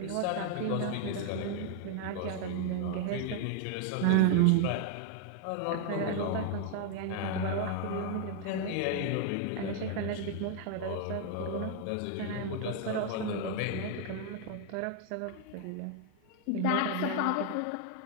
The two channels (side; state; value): both; different; correlation 0.00